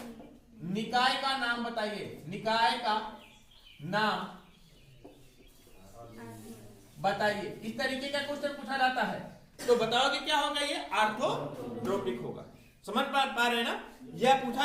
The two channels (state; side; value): identical; both; correlation 1.00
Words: निकाय का नाम बताइए, निकाय का नाम बताइए। इस तरीके का क्वेश्चन पूछा जाता है, तो बताओगे क्या होगा? ये आर्थोरोम्बिक होगा। समझ पा रहे हैं ना? यह पूछा